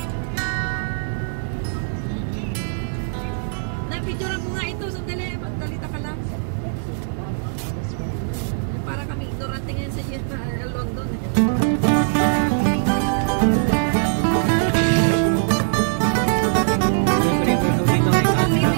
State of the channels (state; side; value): silent; left; digital silence